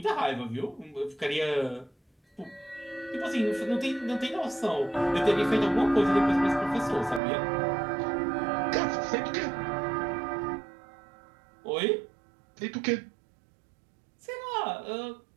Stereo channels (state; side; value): drops out; left; at 7.2 s